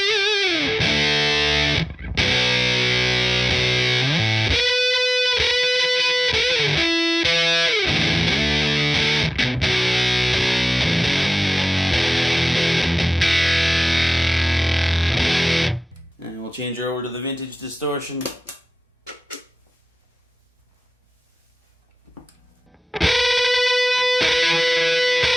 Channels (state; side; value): normal; both; correlation 0.98